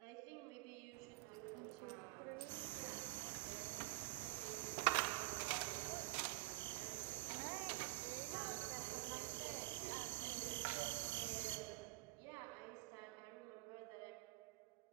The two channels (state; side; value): quieter; left; 21.0 dB